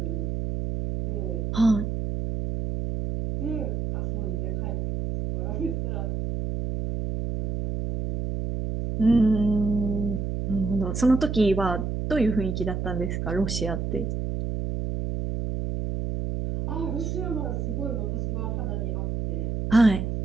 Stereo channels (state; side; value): noise; right; hum, 2 dB below the sound